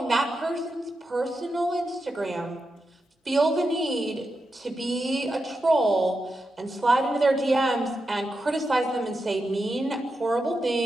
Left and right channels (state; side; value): normal; both; correlation 0.88